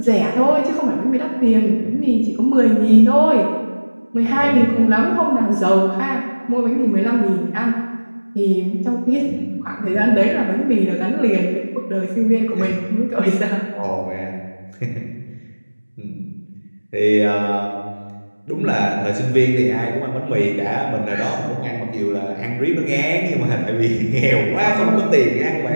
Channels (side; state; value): both; inverted; correlation -1.00